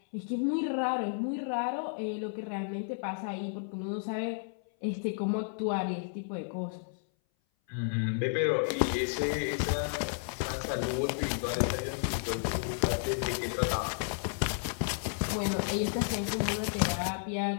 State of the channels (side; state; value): right; silent; 56 dB below the other